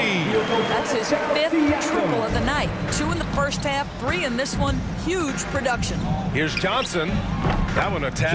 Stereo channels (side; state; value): both; identical; correlation 1.00